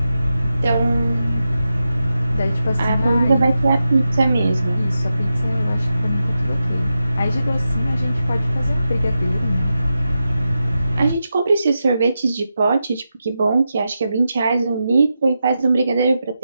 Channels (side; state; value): both; inverted; correlation -0.90